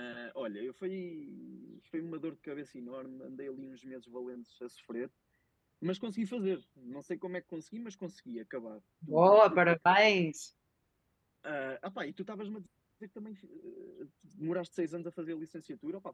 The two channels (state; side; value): identical; both; correlation 1.00